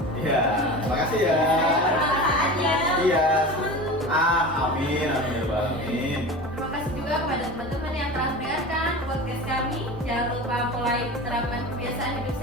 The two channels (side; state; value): both; normal; correlation 0.32